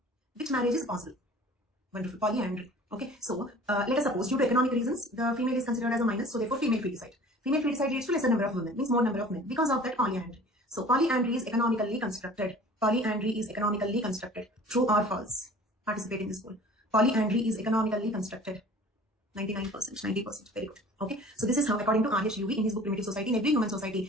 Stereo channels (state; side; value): normal; both; correlation 0.46